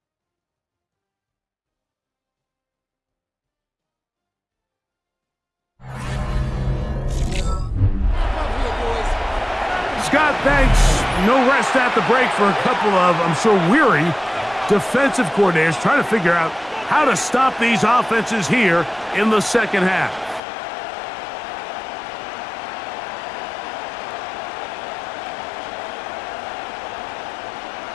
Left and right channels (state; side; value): drops out; right; at 20.4 s